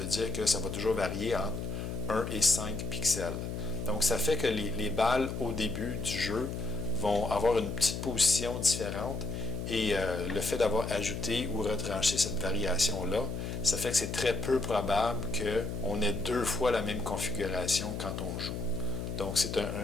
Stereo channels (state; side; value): noise; left; hum, 5 dB below the sound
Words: dire que ça va toujours varier entre 1 et 5 pixels. Donc, ça fait que les balles au début du jeu vont avoir une petite position différente. Et le fait d'avoir ajouté ou retranché cette variation-là, ça fait que c'est très peu probable qu'on ait 2 fois la même configuration quand on joue. Donc, c'est